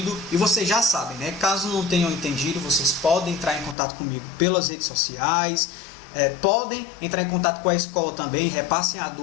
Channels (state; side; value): drops out; right; at 3.8 s